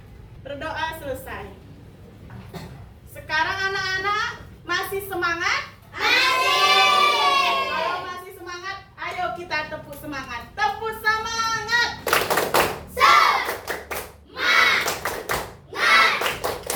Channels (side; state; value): both; identical; correlation 1.00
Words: Berdoa selesai. Sekarang anak-anak masih semangat? Masih. Kalau masih semangat, ayo kita tepuk semangat. Tepuk semangat.